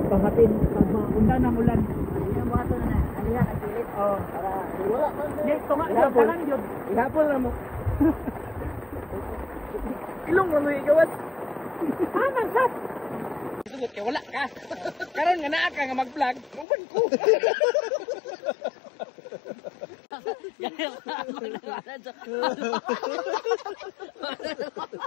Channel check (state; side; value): drops out; right; at 16.7 s